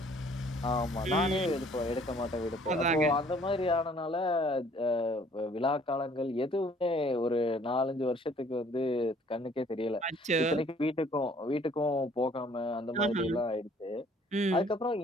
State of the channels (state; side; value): normal; both; correlation 0.58